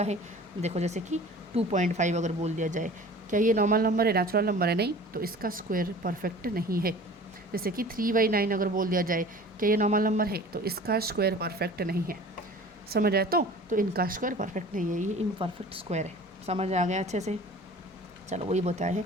है, देखो जैसे कि 2.5 अगर बोल दिया जाए, क्या ये नॉर्मल नंबर है, नेचुरल नंबर है, नहीं, तो इसका स्क्वायर परफेक्ट नहीं है। जैसे कि 3/9 अगर बोल दिया जाए, क्या ये नॉर्मल नंबर है, तो इसका स्क्वायर परफेक्ट नहीं है। समझ आए, तो इनका स्क्वायर परफेक्ट नहीं है, ये इम्परफेक्ट स्क्वायर है। समझ आ गया अच्छे से, चलो वही बताया है।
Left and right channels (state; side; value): normal; both; correlation 0.43